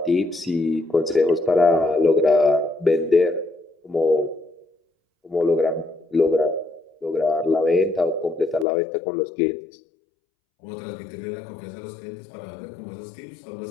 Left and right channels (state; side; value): drops out; right; at 8.7 s